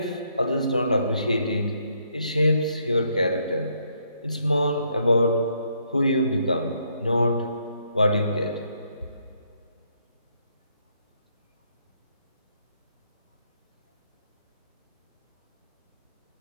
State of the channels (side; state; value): both; inverted; correlation -0.72